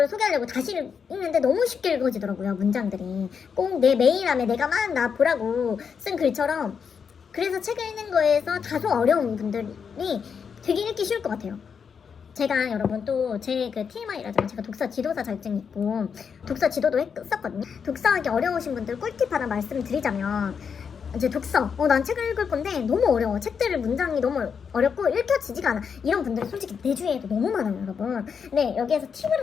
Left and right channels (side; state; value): right; quieter; 6.6 dB